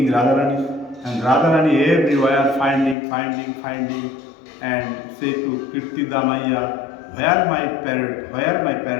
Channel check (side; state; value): right; drops out; at 3.0 s